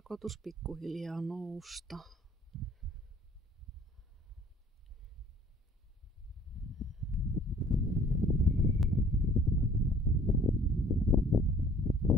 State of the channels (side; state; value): both; normal; correlation 0.55